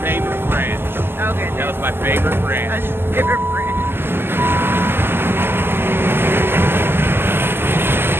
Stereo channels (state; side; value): late; left; 0.11 ms